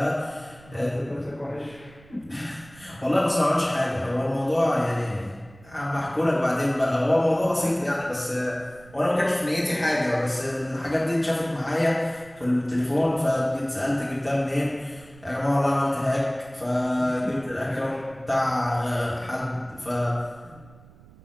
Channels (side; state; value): right; noise; rumble, 24 dB below the sound